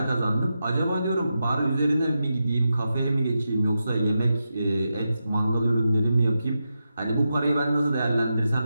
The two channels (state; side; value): inverted; both; correlation -0.88